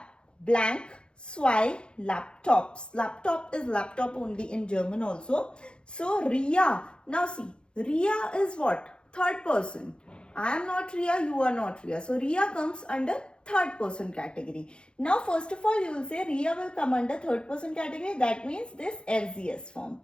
blank, zwei, laptops. Laptop is laptop only in German also. So Ria, now see, Ria is what? Third person. I am not Ria, you are not Ria. So Ria comes under third person category. Now first of all you will say Ria will come under third person category. That means this RZS form.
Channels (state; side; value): late; right; 0.052 ms